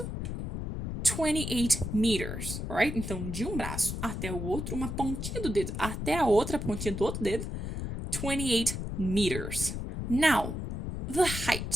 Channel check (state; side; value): noise; left; rumble, 4 dB below the sound